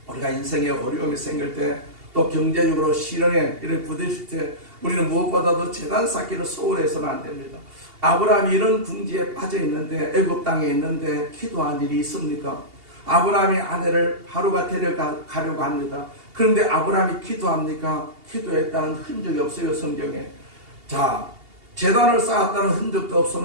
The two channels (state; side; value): late; left; 2.8 ms